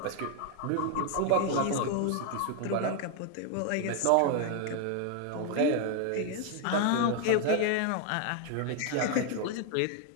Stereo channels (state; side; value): different; both; correlation 0.00